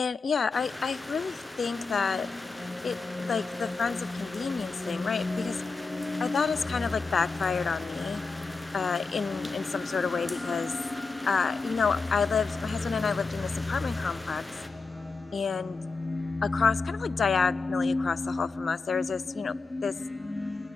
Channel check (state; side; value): quieter; right; 4.2 dB